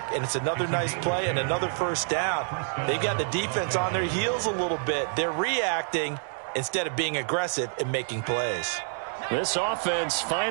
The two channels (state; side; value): silent; left; 60 dB below the other